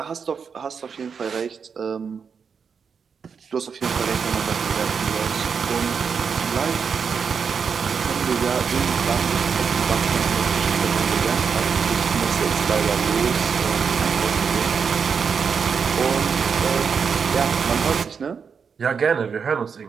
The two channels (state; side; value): quieter; left; 6.2 dB